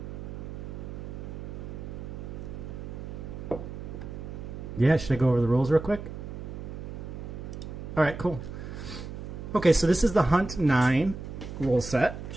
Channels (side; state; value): right; noise; hum, 9 dB below the sound